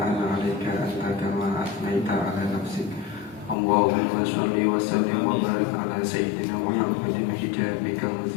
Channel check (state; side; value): drops out; right; at 3.6 s